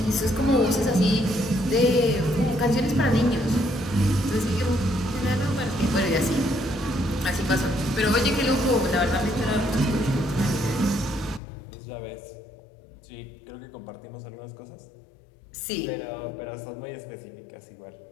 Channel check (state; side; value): drops out; right; at 11.4 s